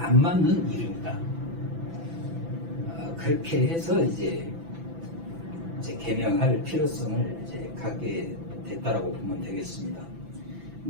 맞는 이름이다. 그렇게 해서 이제 개명할 필요성을 이제 갖게 됐다라고 보면 되겠습니다.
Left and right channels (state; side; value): late; left; 6.0 ms